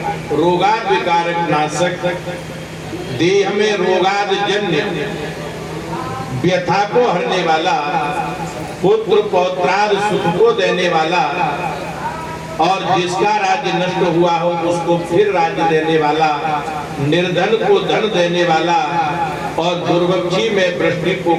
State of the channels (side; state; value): both; identical; correlation 1.00